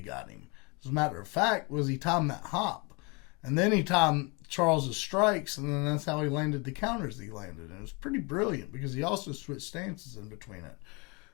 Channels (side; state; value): right; quieter; 30.0 dB